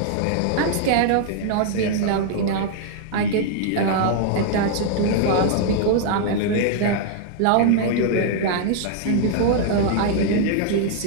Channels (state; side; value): different; both; correlation 0.00